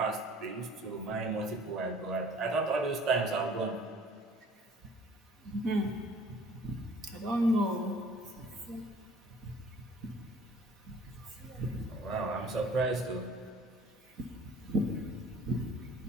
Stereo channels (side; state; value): both; normal; correlation 0.52